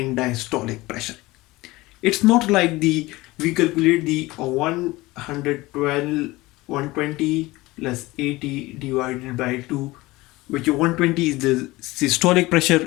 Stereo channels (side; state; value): right; quieter; 20.3 dB